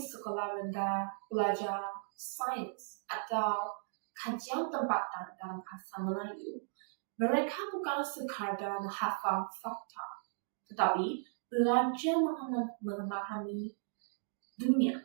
rendah belajar sains atau kajian tempatan dalam bahasa Melayu, mereka bukan sekadar menghafal fakta, tetapi belajar memahami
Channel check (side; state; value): left; silent; digital silence